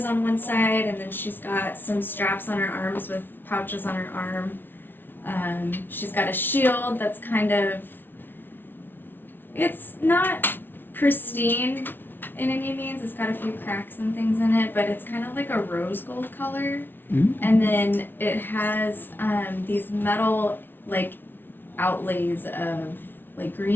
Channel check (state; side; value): late; right; 0.099 ms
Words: on one side, and then she's got some straps on her arms with pouches on her arm. She's got a shield that's kind of, it's not pristine in any means. It's got a few cracks and things in it, but it's kind of like a rose gold color. And then it has these metal like outlays of like